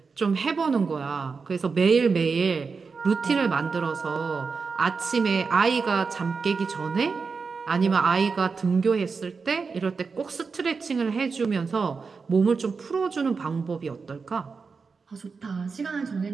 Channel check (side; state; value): left; quieter; 4.9 dB